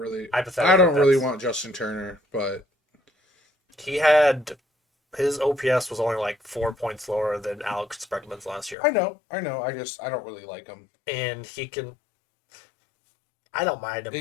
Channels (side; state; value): right; drops out; at 8.8 s